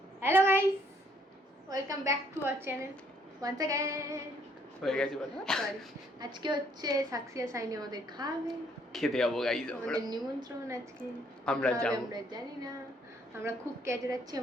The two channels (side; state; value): both; normal; correlation 0.66